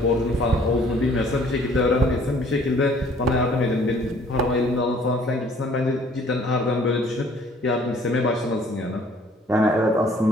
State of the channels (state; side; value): normal; both; correlation 0.57